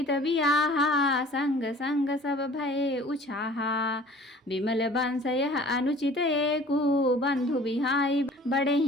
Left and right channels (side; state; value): both; normal; correlation 0.48